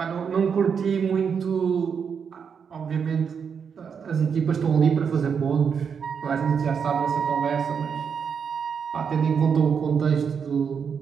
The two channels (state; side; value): quieter; left; 6.7 dB